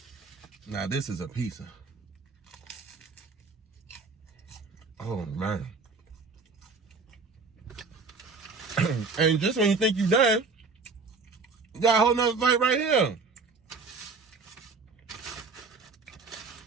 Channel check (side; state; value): left; quieter; 4.3 dB